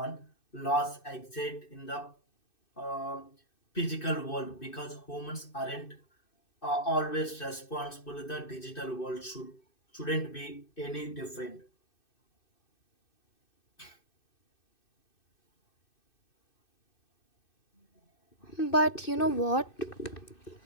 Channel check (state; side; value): late; right; 2.6 ms